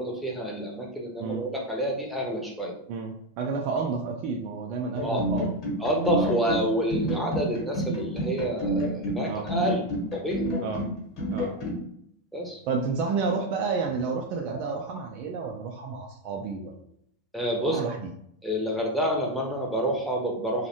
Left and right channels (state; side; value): normal; both; correlation 0.10